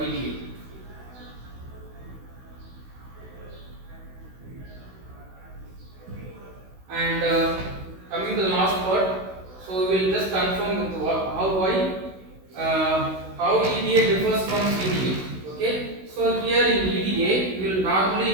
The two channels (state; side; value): late; left; 16 ms